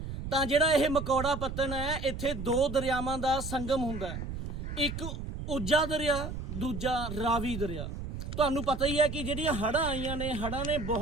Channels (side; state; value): right; noise; rumble, 6 dB below the sound